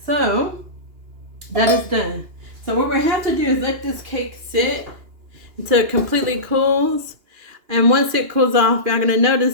so that is done. So what we have to do is let this cake sit until it completely cools. And once it cools off, you're going to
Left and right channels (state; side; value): late; left; 2.9 ms